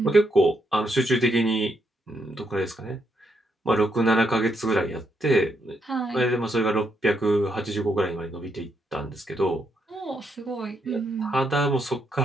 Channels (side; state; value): both; normal; correlation 0.78